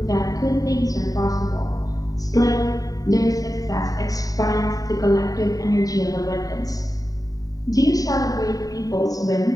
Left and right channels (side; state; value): right; late; 0.18 ms